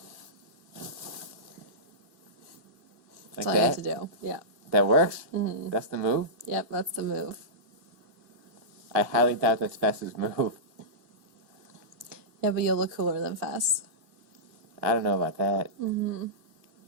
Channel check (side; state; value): left; late; 2.4 ms